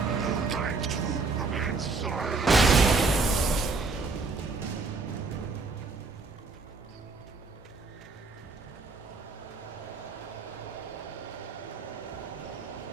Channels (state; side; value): quieter; left; 4.0 dB